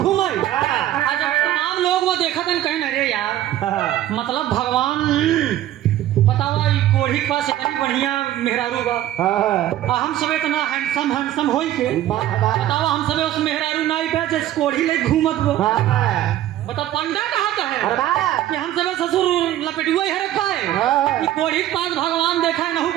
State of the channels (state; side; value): quieter; left; 13.1 dB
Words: घूमे आज जब तमाम लोग वो देखते हैं कहें अरे यार मतलब भगवान बतावा ई कोढ़ी के पास इतनी बढ़िया मेहरारू बा हम सब इतना हैंडसम होई के बतावा हम सब उस मेहरारू नाई पे जिस कोढ़ी ले घूमत बो बता पंडा कहा का है कि हम सब ससुर लपेटुआ ही हरक पाए ई कोढ़ी के पास भगवान देखा है नहुक